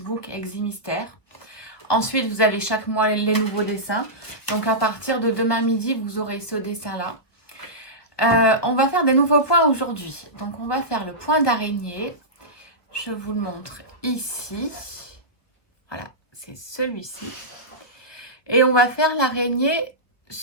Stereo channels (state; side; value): late; right; 1.3 ms